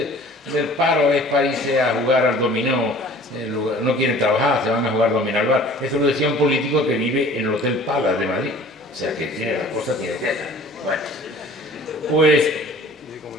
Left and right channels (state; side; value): normal; both; correlation 0.47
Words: paro es para irse a jugar al dominó no quieren trabajar, se van a jugar dominó al bar. Eso lo decía un político que vive en el Hotel Palace de Madrid. O sea que tiene las cosas tiene que ser. Bueno, pues